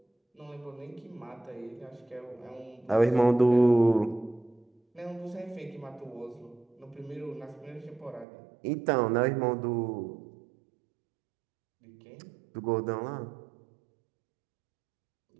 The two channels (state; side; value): drops out; left; at 8.2 s